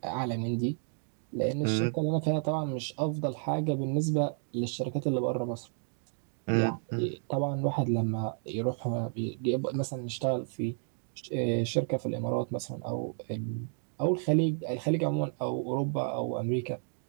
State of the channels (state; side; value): silent; left; 57 dB below the other